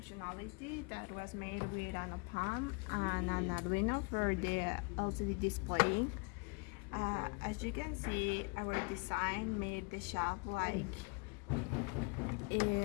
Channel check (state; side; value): quieter; right; 32.2 dB